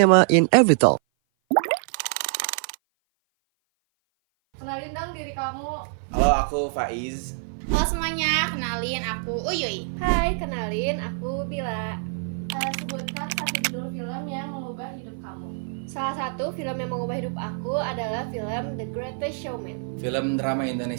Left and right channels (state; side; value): silent; left; 56 dB below the other